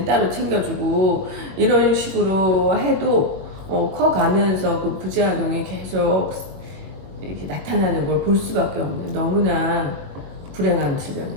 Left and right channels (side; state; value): left; late; 21 ms